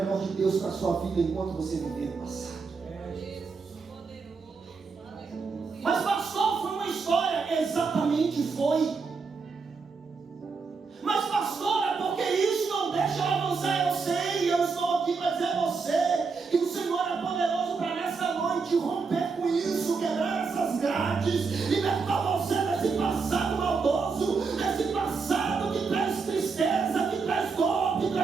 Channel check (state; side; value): quieter; left; 4.8 dB